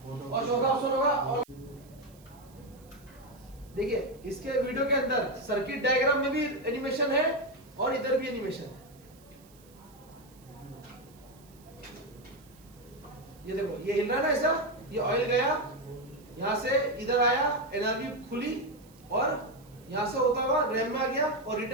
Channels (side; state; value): right; noise; hiss, 27 dB below the sound